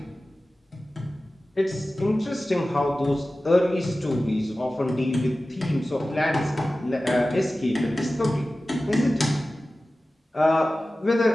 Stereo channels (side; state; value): both; normal; correlation 0.96